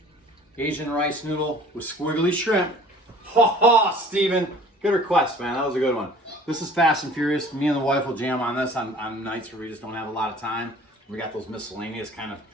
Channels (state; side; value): normal; both; correlation 0.49